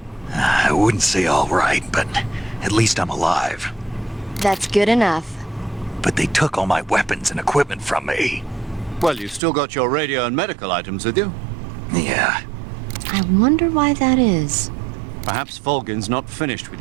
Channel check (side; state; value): left; drops out; at 9.4 s